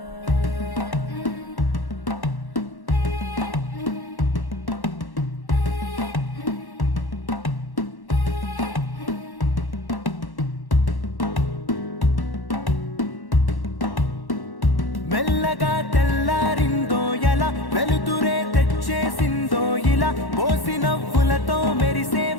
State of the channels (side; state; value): right; late; 1.1 ms